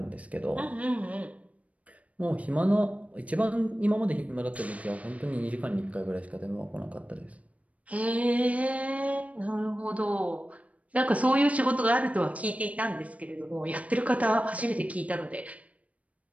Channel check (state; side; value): late; left; 0.067 ms